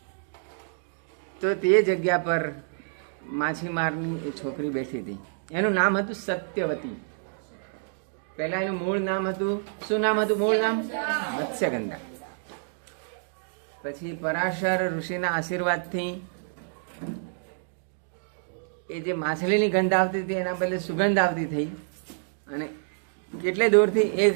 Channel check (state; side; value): silent; left; digital silence